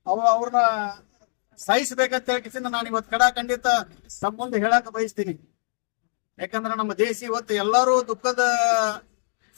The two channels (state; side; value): silent; right; digital silence